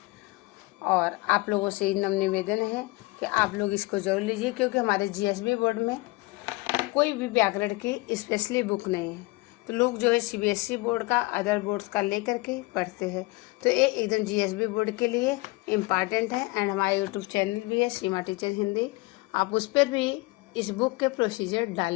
और आप लोगों से नम्र निवेदन है कि आप लोग इसको जरूर लीजिए, क्योंकि हमारे GSB बोर्ड में कोई भी व्याकरण की स्पेशली बुक नहीं है। तो लोग जो है CBSE बोर्ड का, अदर बोर्ड्स का लेकर के पढ़ते हैं। तो ये एकदम GSB बोर्ड के लिए इम्पॉर्टेंट है। एंड हमारा YouTube चैनल भी है, सीमा टीचर हिंदी, आप उस पर भी इस बुक के प्रोसीजर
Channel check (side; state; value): right; quieter; 23.2 dB